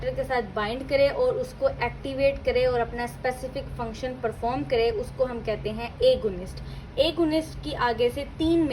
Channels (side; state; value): both; identical; correlation 1.00